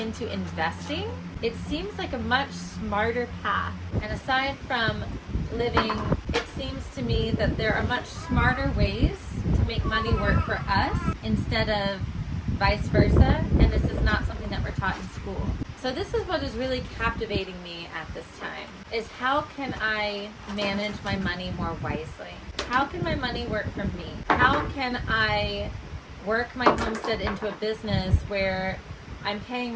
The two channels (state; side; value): identical; both; correlation 1.00